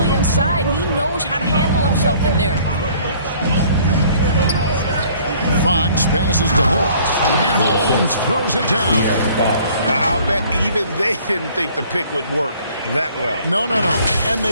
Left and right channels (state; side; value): inverted; both; correlation -0.55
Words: inside. He knows how to handle himself in there. Fox passes to Holmes, and Holmes throws it down. I'll bet even they didn't think the pick would work that well. No. And